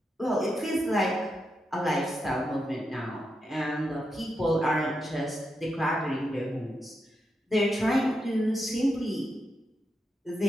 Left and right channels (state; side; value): normal; both; correlation 0.85